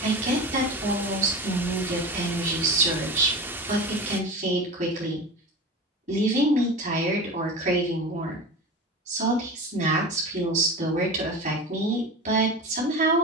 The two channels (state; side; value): normal; both; correlation 0.29